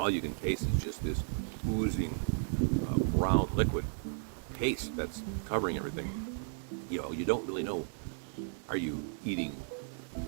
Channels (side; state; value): left; silent; digital silence